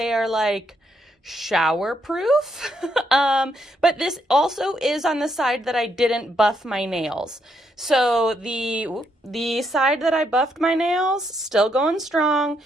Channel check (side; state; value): both; normal; correlation 0.76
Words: are shower proof. But this also is on the side that I didn't buff my nails. So the side that I buffed my nails, still going strong.